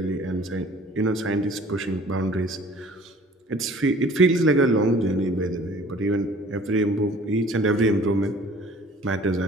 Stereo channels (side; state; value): both; normal; correlation 0.51